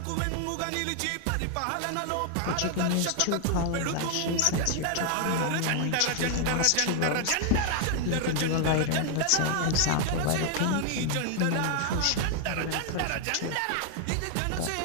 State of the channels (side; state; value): both; different; correlation 0.00